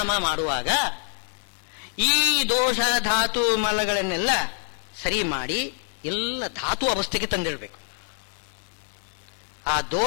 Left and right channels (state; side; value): silent; right; 56 dB below the other